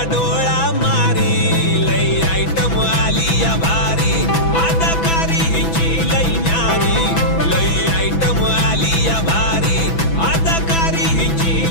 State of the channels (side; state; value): right; late; 6.0 ms